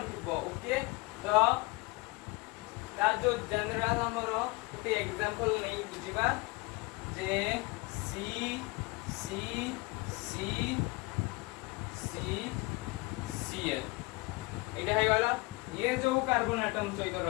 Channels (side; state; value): right; quieter; 24.5 dB